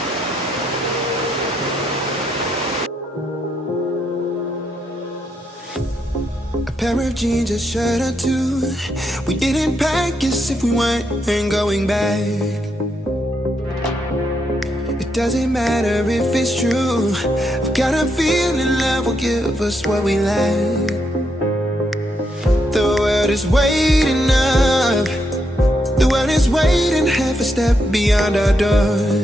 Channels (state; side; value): normal; both; correlation 0.79